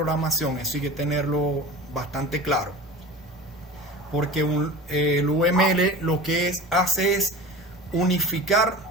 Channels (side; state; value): both; normal; correlation 0.35